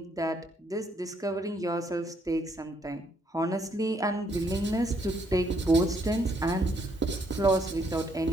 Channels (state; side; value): normal; both; correlation 0.71